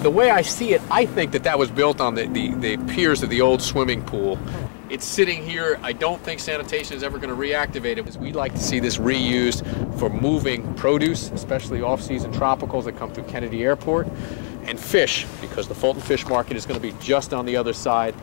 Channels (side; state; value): right; silent; digital silence